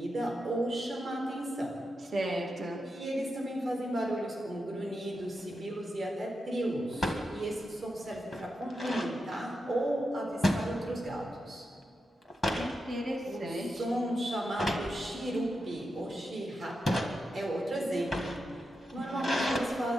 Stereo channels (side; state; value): both; normal; correlation 0.88